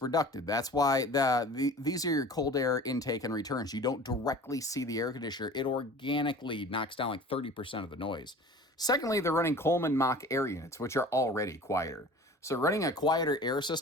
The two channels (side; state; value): both; normal; correlation 0.42